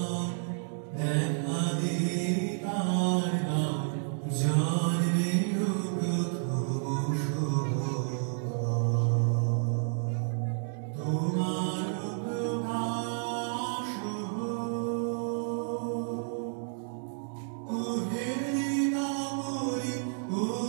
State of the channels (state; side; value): silent; left; digital silence